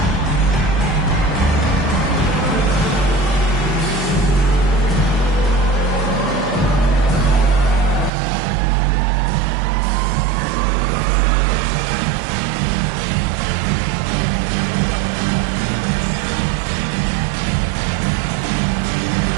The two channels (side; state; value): left; drops out; at 8.1 s